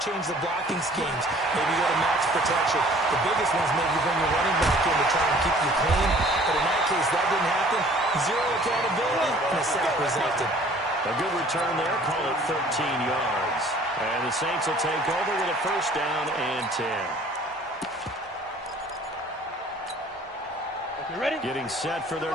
the blocking schemes. Maybe you go to max protection. The biggest one's maybe bring your running back in to try and keep you clean. But in that case, that didn't happen. Zero accountability, and a sack resulted. A good return there, call it 13 yards. And the Saints will take over with a first down and 10. Ready? Getting set for their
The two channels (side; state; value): both; normal; correlation 0.53